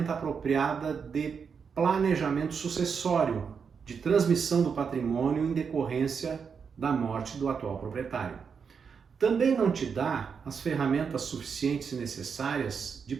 apropriada de planejamento sucessório, de transmissão do patrimônio em decorrência da morte do atual proprietário. Também não te dá as ferramentas suficientes e necessárias de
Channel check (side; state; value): left; quieter; 6.2 dB